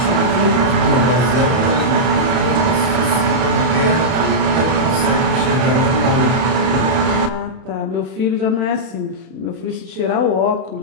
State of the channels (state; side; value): late; left; 31 ms